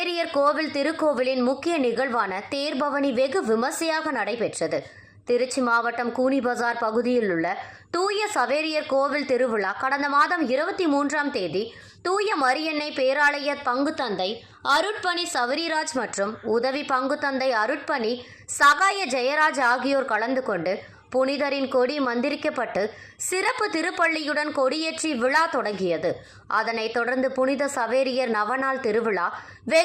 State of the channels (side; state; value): both; identical; correlation 1.00